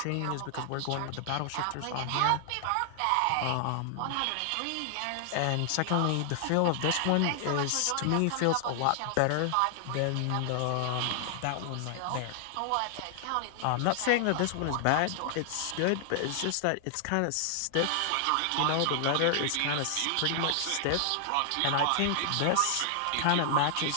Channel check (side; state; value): both; different; correlation 0.00